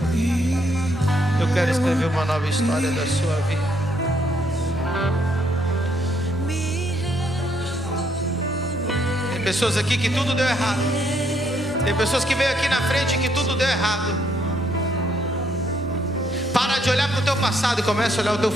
Eu quero escrever uma nova história da sua vida. Tem pessoas aqui que tudo deu errado. Tem pessoas que veio aqui na frente que tudo deu errado. Para de olhar para o teu passado e começa a olhar o teu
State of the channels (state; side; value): normal; both; correlation 0.71